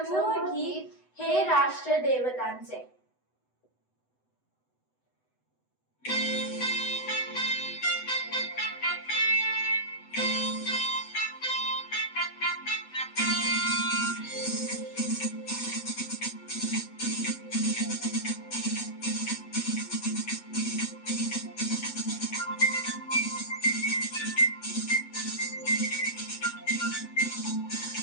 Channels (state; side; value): late; right; 8.0 ms